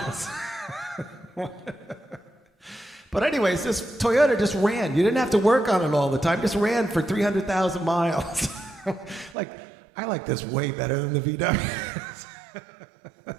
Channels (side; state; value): left; drops out; at 9.3 s